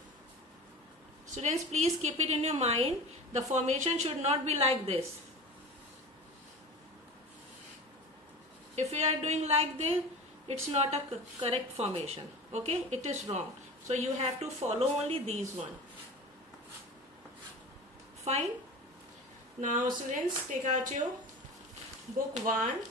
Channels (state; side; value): normal; both; correlation 0.34